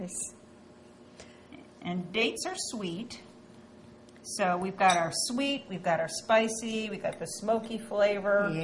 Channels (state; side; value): identical; both; correlation 1.00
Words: is... And dates are sweet. So we've got our sweet, we've got our spicy, we've got the smoky flavor.